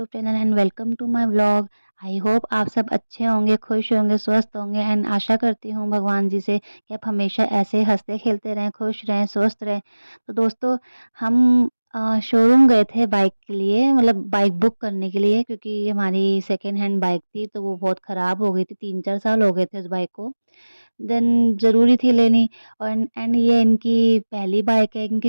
channel and welcome to my vlog. I hope आप सब अच्छे होंगे, खुश होंगे, स्वस्थ होंगे एंड आशा करती हूँ भगवान जी से कि आप हमेशा ऐसे हंसते खेलते रहें, खुश रहें, स्वस्थ रहें। तो दोस्तों, हम शोरूम गए थे बाइक के लिए, मतलब बाइक बुक करने के लिए, क्योंकि हमारी सेकेंड हैंड बाइक थी तो वो बहुत ख़राब हो गई थी। 3-4 साल हो गए थे उस बाइक को। देन ज़रूरी थी लेनी। और एंड ये इनकी पहली बाइक है, इनकी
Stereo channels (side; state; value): both; inverted; correlation -1.00